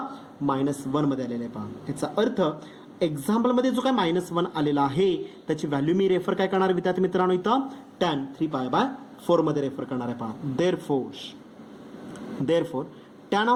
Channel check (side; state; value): both; identical; correlation 1.00